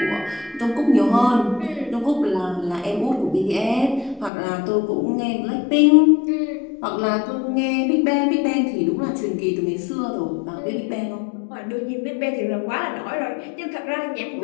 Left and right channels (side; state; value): right; drops out; at 4.3 s